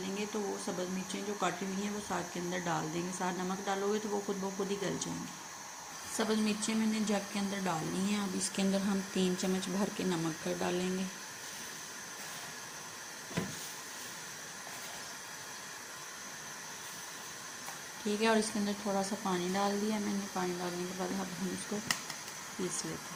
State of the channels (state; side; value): identical; both; correlation 1.00